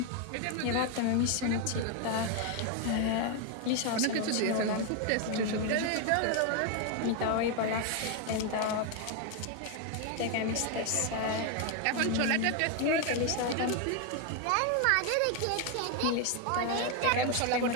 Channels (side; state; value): both; different; correlation 0.01